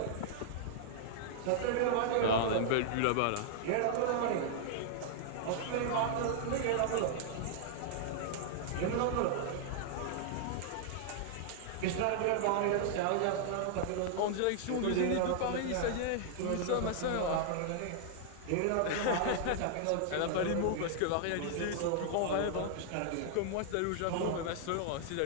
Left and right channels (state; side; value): different; both; correlation -0.01